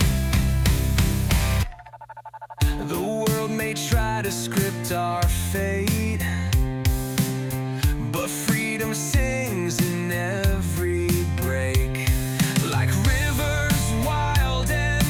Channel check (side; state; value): both; identical; correlation 1.00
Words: The world may try to script our fate, but freedom sings in every break. Like rivers wild